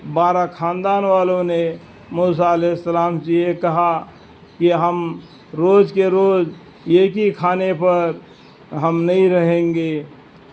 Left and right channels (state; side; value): identical; both; correlation 1.00